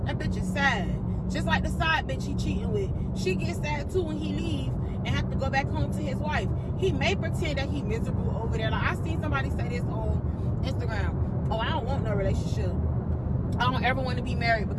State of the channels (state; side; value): identical; both; correlation 1.00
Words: That bitch is sad. Just like the side bitch he cheating with. She gets sad too when he leave and have to go back home to his wife. He may pretend that he miserable over there. Like, I seen somebody say this on Instagram. Oh, I don't want no relationship. I don't ever want to be married